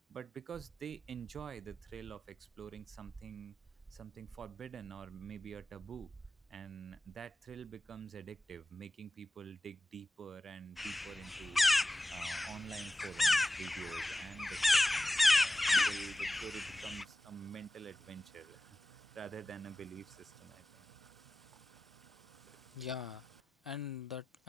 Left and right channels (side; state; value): both; normal; correlation 0.95